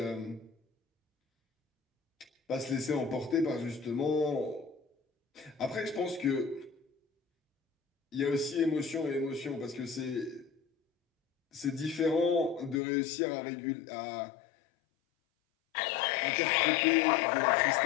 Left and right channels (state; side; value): drops out; right; at 12.8 s